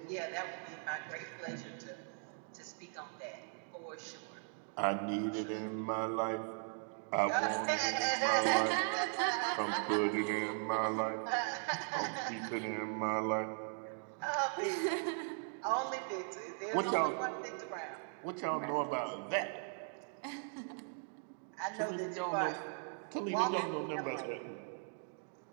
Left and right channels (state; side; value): silent; left; 52 dB below the other